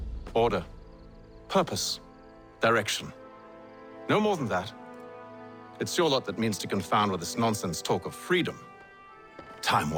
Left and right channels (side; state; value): both; identical; correlation 1.00